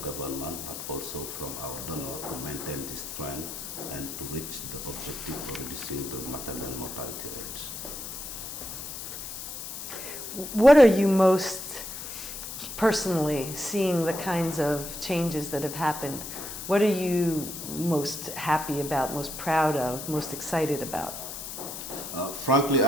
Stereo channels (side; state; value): left; noise; hiss, 8 dB below the sound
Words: but also from our donor to maintain this trend and to reach the objective of reducing the maternal mortality rates. What are you most personally seeing the kinds of changes that have happened? What are you most happy about, most proud of, most excited about? Frankly,